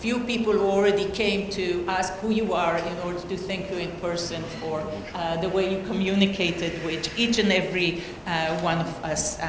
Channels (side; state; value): both; identical; correlation 1.00